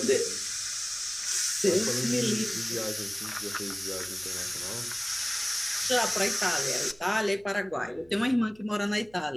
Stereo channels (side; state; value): right; noise; hum, 29 dB below the sound